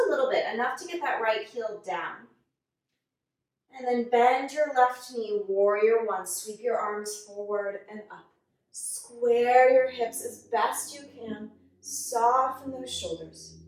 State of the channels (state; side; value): identical; both; correlation 1.00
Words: little bit, enough to get that right heel down. And then bend your left knee, warrior one. Sweep your arms forward and up. Square your hips as best you can. Soften those shoulders.